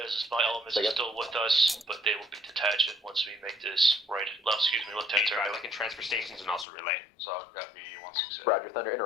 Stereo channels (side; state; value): right; drops out; at 6.7 s